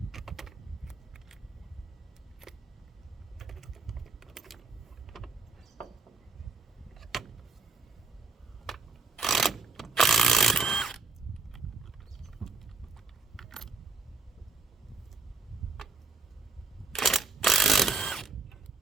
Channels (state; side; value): quieter; left; 4.3 dB